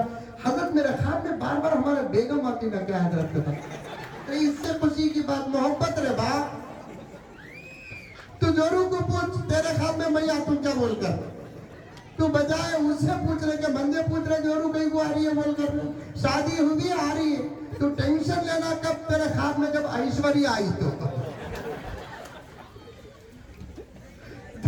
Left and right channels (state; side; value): identical; both; correlation 1.00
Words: حضرت میرے خواب میں بار بار ہمارے بیگم آتی، میں کیا حضرت کا تو اس سے خوشی کی بات محبت رہے باپ۔ تو جورو کو پوچھ تیرے خواب میں میں آتوں کیا بول کر، تو بجائے اس سے پوچھ رہے کہ بندے پوچھ رہے جورو کہیں کو آ رہی ہے بول کر، شادی ہوئی آ رہی ہے، تو ٹینشن لینا کب تیرے خواب میں جب ایشوری آئی تو